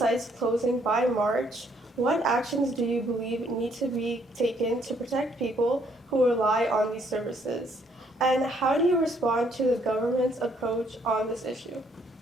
closing by March, what actions do you believe need to be taken to protect people who rely on these services? And how do you respond to the government's approach on this issue?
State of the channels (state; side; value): normal; both; correlation 0.67